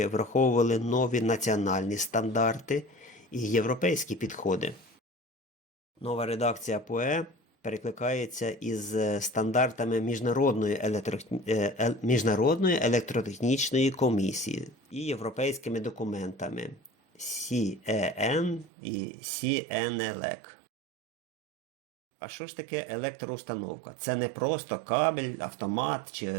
враховували нові національні стандарти і європейські підходи. Нова редакція ПУЕ перекликається із стандартами Міжнародної електротехнічної комісії і європейськими документами CEN і CNELEC. А що ж таке електроустановка? Це не просто кабель, автомат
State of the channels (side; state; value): left; drops out; at 18.7 s